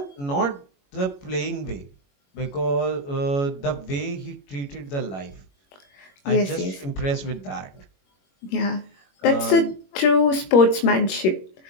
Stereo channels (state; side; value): late; right; 21 ms